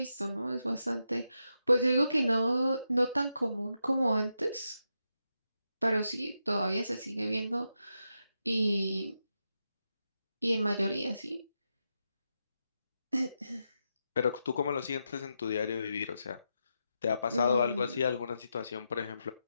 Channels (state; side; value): inverted; both; correlation -0.86